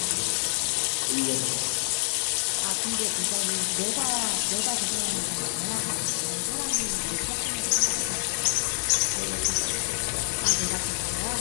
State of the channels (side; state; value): right; silent; digital silence